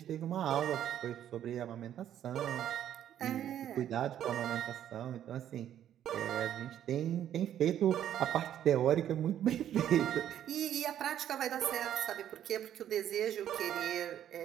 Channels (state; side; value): quieter; left; 10.7 dB